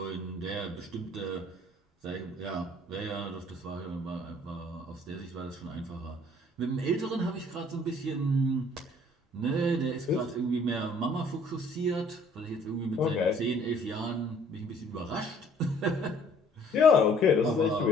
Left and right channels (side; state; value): both; normal; correlation 0.57